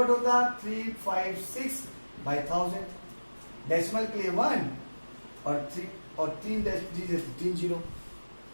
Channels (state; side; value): inverted; both; correlation -1.00